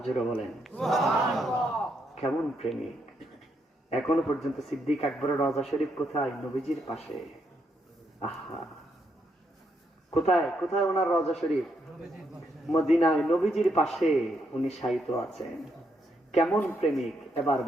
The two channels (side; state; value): both; normal; correlation 0.77